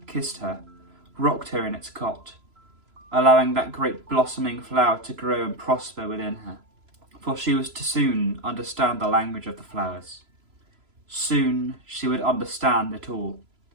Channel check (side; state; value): left; late; 3.0 ms